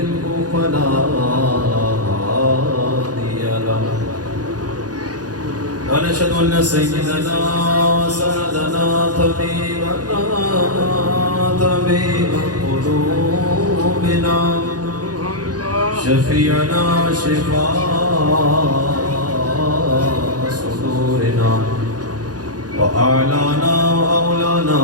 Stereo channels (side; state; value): left; late; 0.69 ms